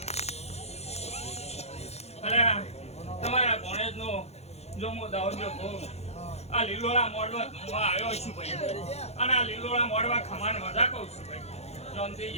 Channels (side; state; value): right; late; 0.31 ms